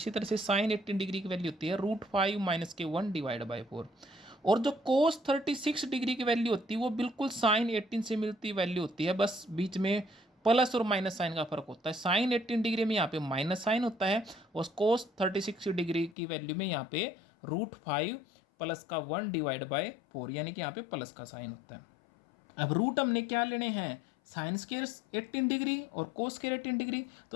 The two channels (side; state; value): right; drops out; at 16.2 s